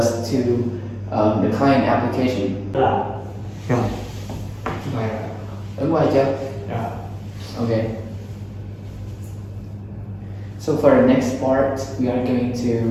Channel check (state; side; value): identical; both; correlation 1.00